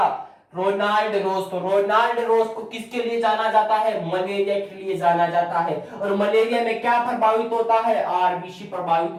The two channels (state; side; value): identical; both; correlation 1.00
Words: रोनाल्ड रोज। तो रोनाल्ड रोज को किसके लिए जाना जाता है? मलेरिया के लिए जाना जाता है। और मलेरिया में क्या प्रभावित होता है? आरबीसी प्रभावित